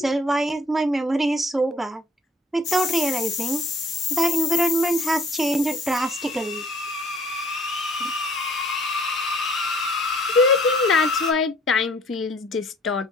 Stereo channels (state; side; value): normal; both; correlation 0.57